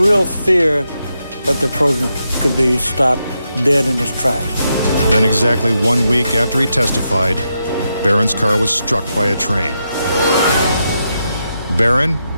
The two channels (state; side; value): inverted; both; correlation -0.84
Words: fear that the program could be stopped dead in its tracks. Then exactly 1 week after he testified, Barron's car was struck by a train. Barron,